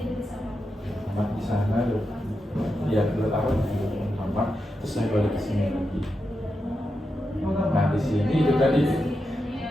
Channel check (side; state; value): both; normal; correlation 0.87